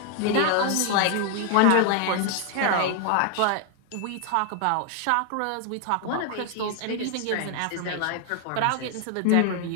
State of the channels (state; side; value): different; both; correlation 0.00